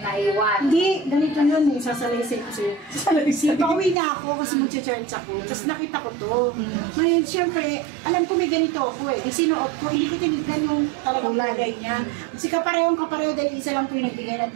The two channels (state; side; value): drops out; left; at 4.0 s